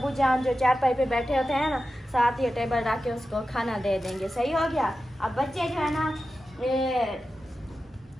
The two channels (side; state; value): both; normal; correlation 0.93